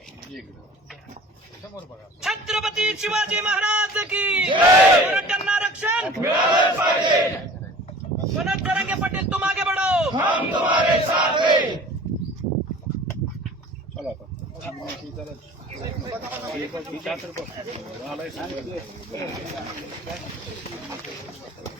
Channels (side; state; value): both; normal; correlation 0.44